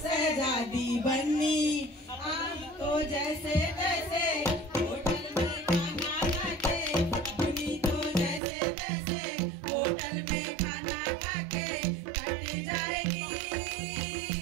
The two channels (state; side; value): drops out; left; at 8.4 s